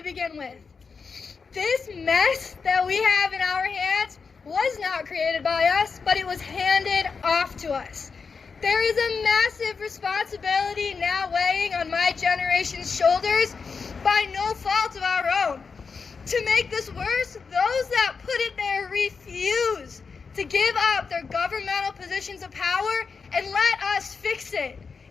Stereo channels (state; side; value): quieter; right; 5.2 dB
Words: begin with. This mess that we have in our hands was not created by us, but it was handed off to us. There is a massive responsibility now weighing on my generation's shoulders by no fault of our own. To make this worse, those that put it there refuse to give up their governmental positions of power and let us fix it.